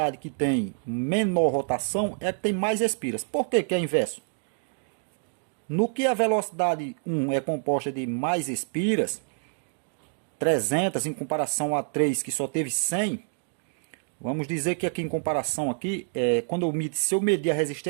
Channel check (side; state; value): left; silent; digital silence